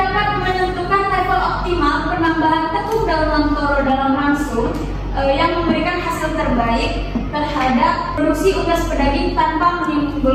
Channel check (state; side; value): identical; both; correlation 1.00